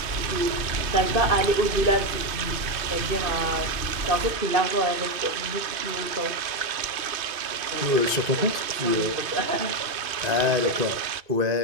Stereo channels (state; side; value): late; left; 2.5 ms